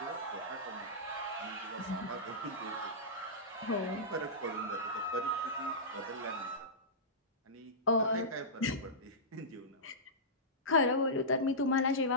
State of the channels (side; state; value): both; normal; correlation -0.17